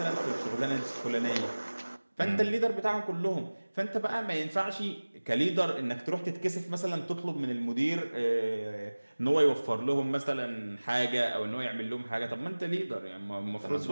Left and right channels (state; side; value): inverted; both; correlation -1.00